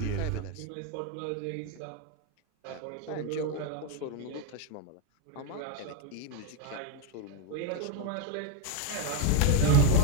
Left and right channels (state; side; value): different; both; correlation 0.01